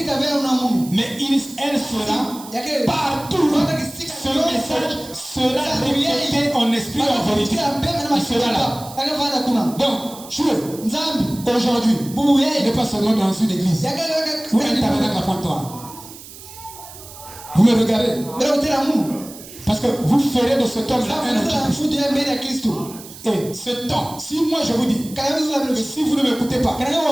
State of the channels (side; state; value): right; noise; hiss, 16 dB below the sound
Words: Mais elle sera partout. Ce message sera répété en esprit et en vérité. Il sera là. Donc, aujourd'hui, vous n'êtes pas seulement dans une église ou un tabernacle à Pointe-Noire. Vous me regardez. Parce que vous ferez de ce temps-là un antichrist. Et ce temps, si moi je vous dis, si vous ne m'écoutez pas,